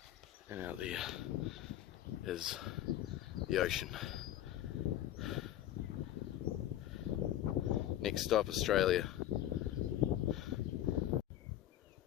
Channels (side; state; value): right; quieter; 12.5 dB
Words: And out there is the ocean. Next stop, Australia.